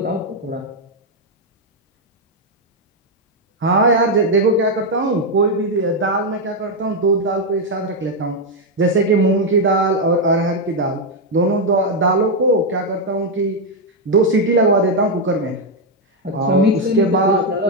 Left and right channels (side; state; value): both; normal; correlation 0.02